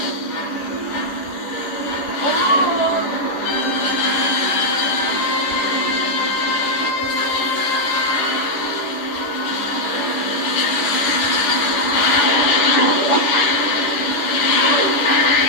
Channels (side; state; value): right; late; 10 ms